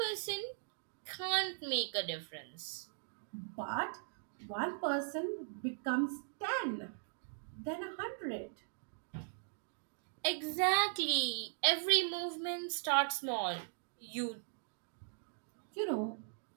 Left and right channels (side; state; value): left; silent; digital silence